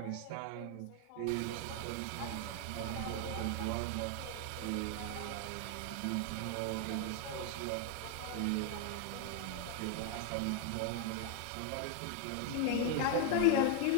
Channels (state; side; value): different; both; correlation 0.00